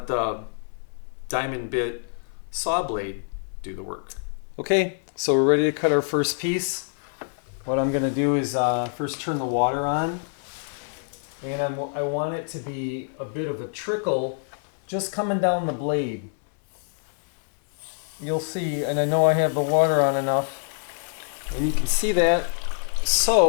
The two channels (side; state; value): right; silent; 61 dB below the other